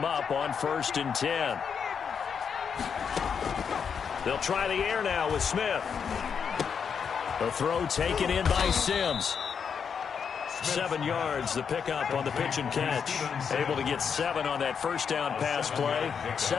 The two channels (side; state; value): right; quieter; 6.7 dB